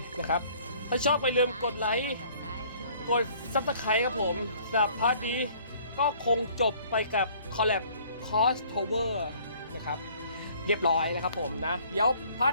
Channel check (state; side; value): inverted; both; correlation -0.56